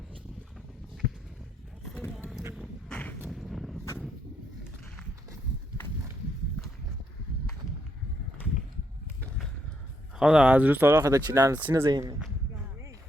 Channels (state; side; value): normal; both; correlation 0.77